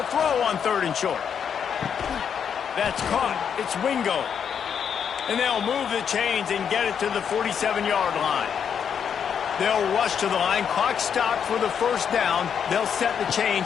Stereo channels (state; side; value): quieter; right; 7.6 dB